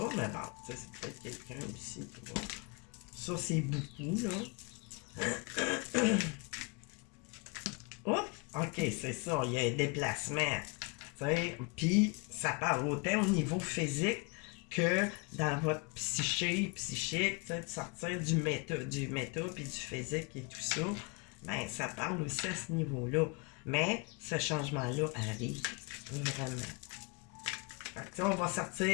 mais bon, c'est peut-être quelqu'un ici qui va. Ça, c'est beaucoup, là. Oups! OK, c'est ça, il y a un déplacement. Puis, ça parle autant au niveau physique que dans votre psychique, de sortir du méta puis du physique et tout ça, ben ça parle aussi à ce niveau-là. Mais ce changement-là arrive vraiment. Fait que, on va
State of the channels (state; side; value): quieter; right; 30.5 dB